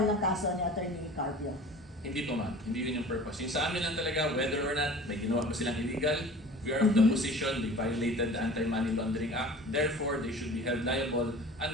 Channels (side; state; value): both; normal; correlation 0.42